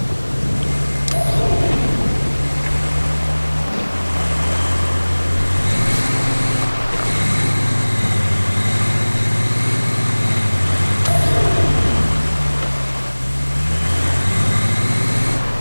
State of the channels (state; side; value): inverted; both; correlation -1.00